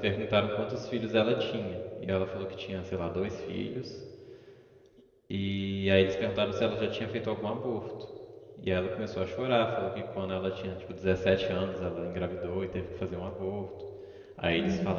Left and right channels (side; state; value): both; identical; correlation 1.00